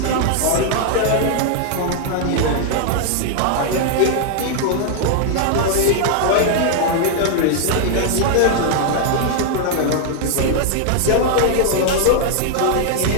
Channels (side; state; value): both; different; correlation 0.00